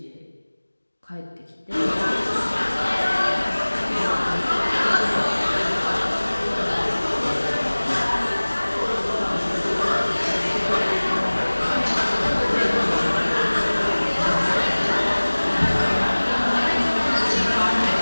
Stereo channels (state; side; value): inverted; both; correlation -1.00